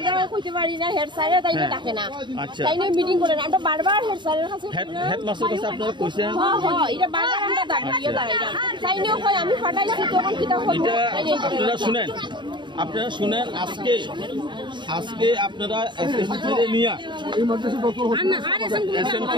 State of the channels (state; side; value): late; left; 0.23 ms